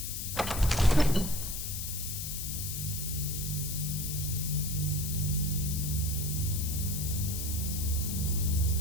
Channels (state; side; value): noise; left; hiss, 4 dB below the sound